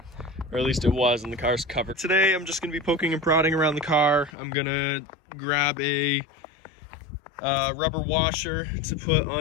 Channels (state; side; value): drops out; right; at 4.3 s